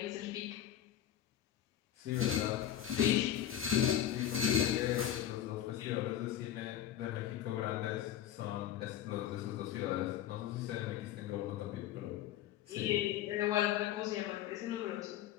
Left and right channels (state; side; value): quieter; right; 11.3 dB